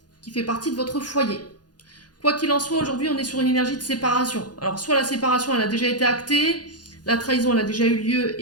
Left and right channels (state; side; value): late; right; 0.69 ms